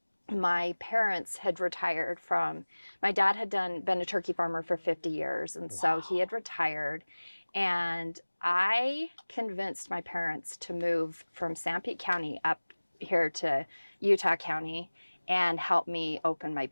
my parents had retired my dad had been a turkey farmer for 50 years. And so he had retired, and I convinced my parents to move from Sanpete County up here to Utah County and help me open my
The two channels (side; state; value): both; inverted; correlation -1.00